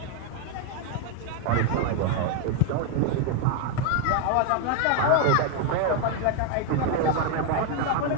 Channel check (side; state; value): both; different; correlation 0.01